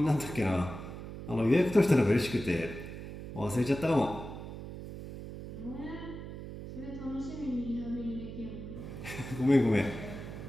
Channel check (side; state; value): right; noise; hum, 10 dB below the sound